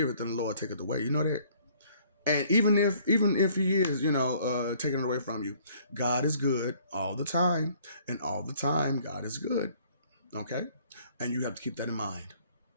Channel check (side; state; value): both; inverted; correlation -0.60